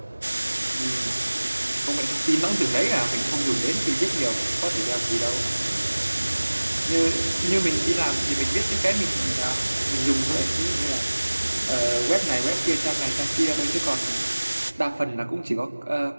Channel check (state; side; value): inverted; both; correlation -1.00